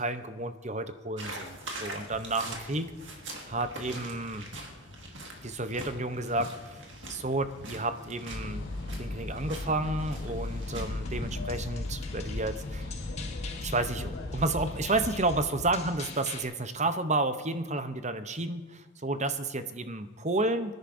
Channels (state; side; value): normal; both; correlation 0.21